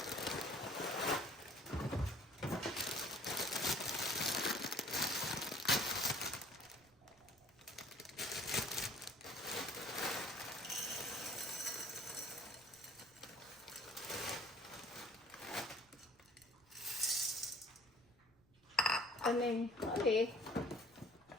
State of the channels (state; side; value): noise; right; rumble, 29 dB below the sound